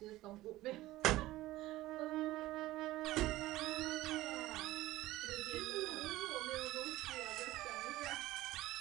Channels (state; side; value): quieter; left; 16.8 dB